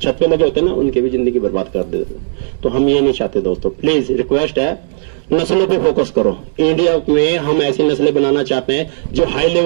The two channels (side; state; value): left; silent; digital silence